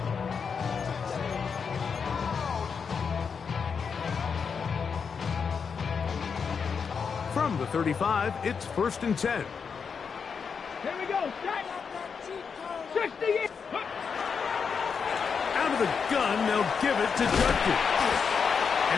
From the 35, it's 1st and 10. Here we go. 60. Out of the gun, they'll give it to Judkins. And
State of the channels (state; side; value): quieter; right; 6.1 dB